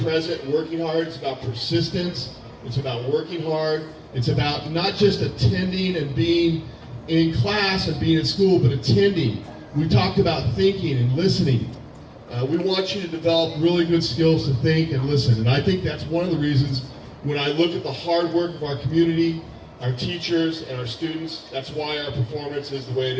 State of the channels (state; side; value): identical; both; correlation 1.00